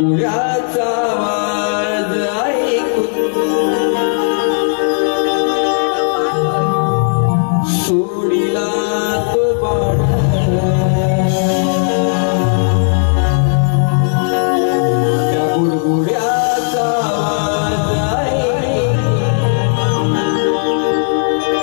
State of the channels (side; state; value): right; silent; digital silence